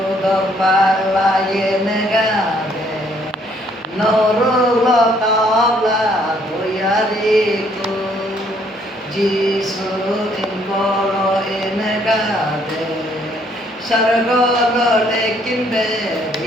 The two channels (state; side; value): normal; both; correlation 0.66